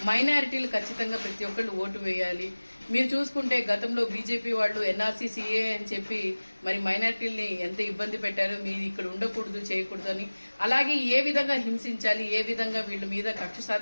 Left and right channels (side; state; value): both; inverted; correlation -1.00